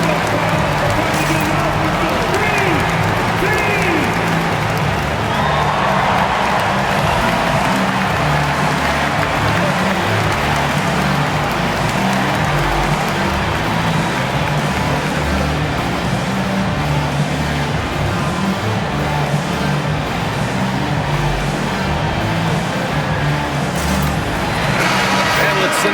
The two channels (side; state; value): both; identical; correlation 1.00